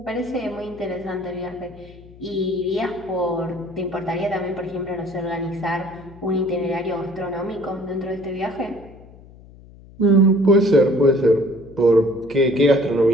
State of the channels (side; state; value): left; noise; hum, 21 dB below the sound